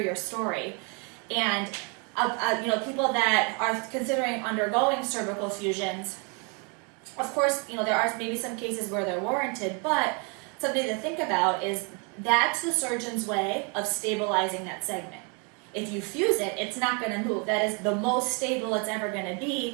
story. And people that are considering undergoing cervical fusions, of course, there are maybe some cases where they're warranted, but something to think about is that's the surgeon's way of stabilizing that segment. If you fuse it, it's not going to move. That is the most stable it's ever going to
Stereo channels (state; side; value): quieter; left; 34.7 dB